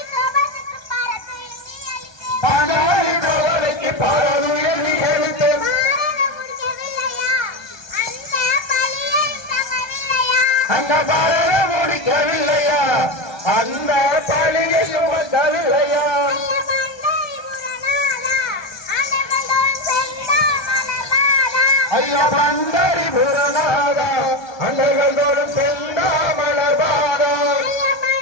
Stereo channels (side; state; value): right; late; 1.2 ms